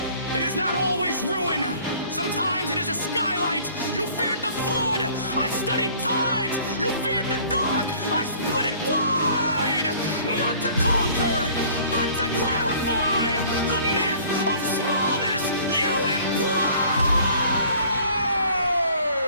it is not always ruin. Sometimes it is a skylight. You feared the flood. I studied tides. You feared the dark. I split it wide. Not to conquer, but to clarify the myth of smallness you imply.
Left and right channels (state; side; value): inverted; both; correlation -0.52